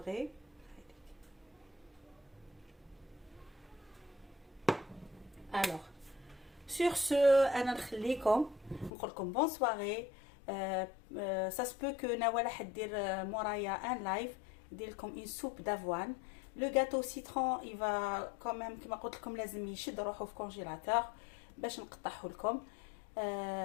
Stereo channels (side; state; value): right; drops out; at 8.9 s